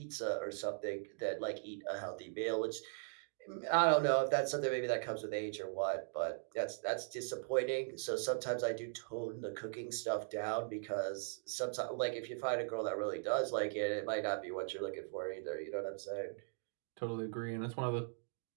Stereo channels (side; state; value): left; silent; digital silence